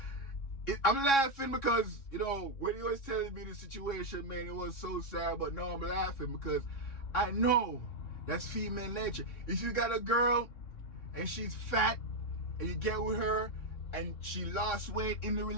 I'm laughing because, you know, when he was telling me the situation, man, it was so sad. But no, I'm laughing because I know that's female nature. If you got a girl and she's fat and you get with her and she lost weight in the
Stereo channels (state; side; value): late; right; 3.6 ms